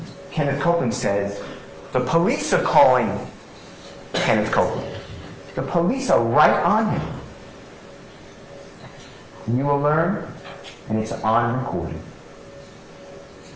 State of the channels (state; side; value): identical; both; correlation 1.00